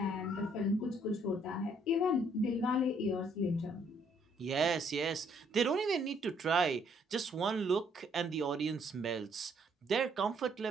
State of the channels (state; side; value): normal; both; correlation 0.67